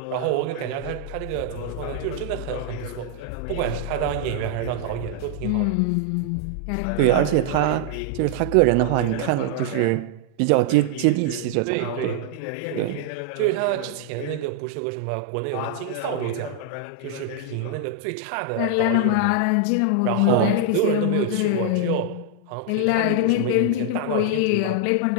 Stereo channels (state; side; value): different; both; correlation 0.00